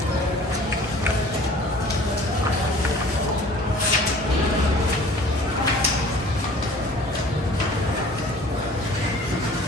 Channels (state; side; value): normal; both; correlation 0.48